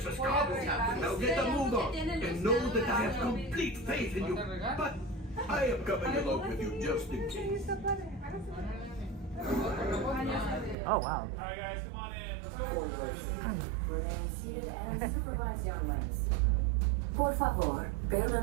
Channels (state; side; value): drops out; left; at 10.8 s